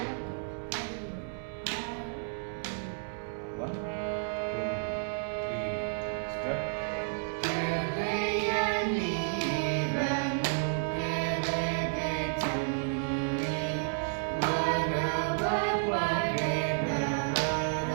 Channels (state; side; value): silent; left; 57 dB below the other